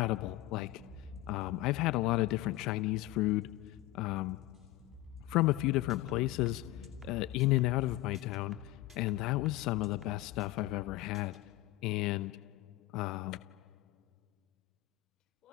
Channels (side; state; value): right; quieter; 17.0 dB